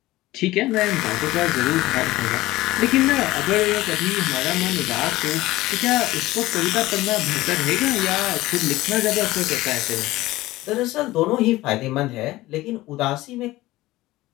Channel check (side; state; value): right; quieter; 17.8 dB